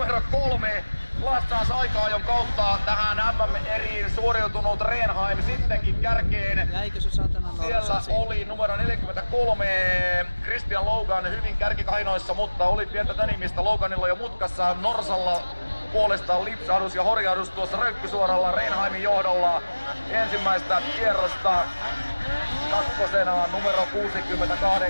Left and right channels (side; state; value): both; inverted; correlation -1.00